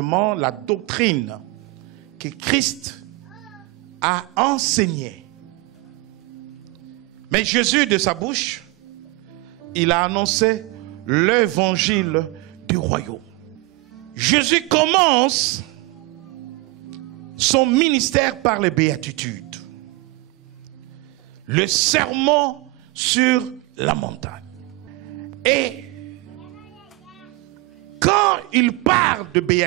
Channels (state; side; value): quieter; left; 21.8 dB